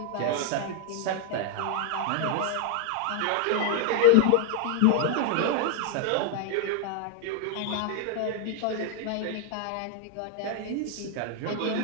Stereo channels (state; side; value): different; both; correlation 0.00